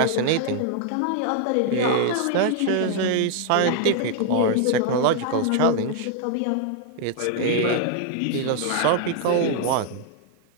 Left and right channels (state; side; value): different; both; correlation 0.00